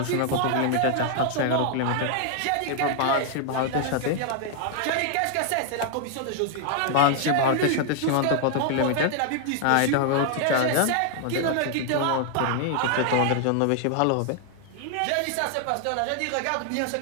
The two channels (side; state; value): both; different; correlation 0.00